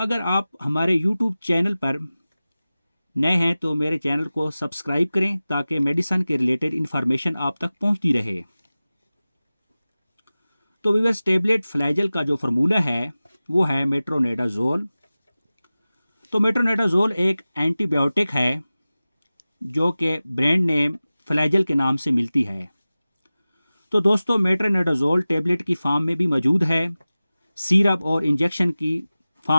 आप हमारे यूट्यूब चैनल पर नए हैं तो मेरे चैनल को सब्सक्राइब करें ताकि मेडिसिन के रिलेटेड इन्फॉर्मेशन आप तक पहुंचती रहे। तो व्यूअर्स, टेबलेट फ्लैजल का जो फार्मूला है वो है मेट्रोनेडाजोल। तो मेट्रोनेडाजोल एक एंटीबायोटिक है जो कि ब्रांड नेम फ्लैजल के नाम से मिलती है। तो दोस्तों, मेट्रोनेडाजोल टेबलेट की फॉर्म में भी मौजूद है, सिरप और इंजेक्शन की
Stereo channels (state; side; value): inverted; both; correlation -0.97